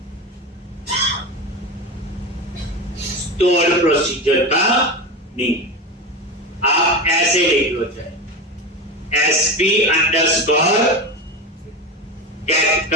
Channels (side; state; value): both; normal; correlation 0.21